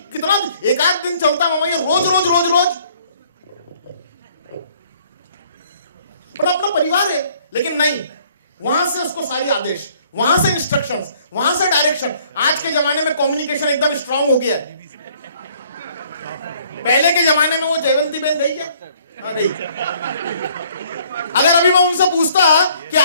कितना, एक आध दिन चलता मामा, ये रोज रोज रोज रोज। पर अपना परिवार है, लेकिन नहीं, वहां से उसको सारी आदेश, वहां से इंस्ट्रक्शंस, वहां से डायरेक्शन। आज के जमाने में कम्युनिकेशन एकदम स्ट्रांग हो गया है। पहले के जमाने में वो जयवंती बहन गई क्या? नहीं। अगर अभी मैं उनसे पूछता कि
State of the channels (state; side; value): inverted; both; correlation -0.61